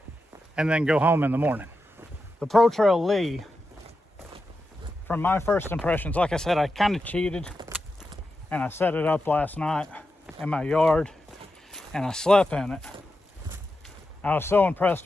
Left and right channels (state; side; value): normal; both; correlation 0.89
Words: and then go home in the morning. The Protrail LI, from my first impressions, like I said, I kind of cheated and I set it up last night in my yard and I slept in it. I was so impressed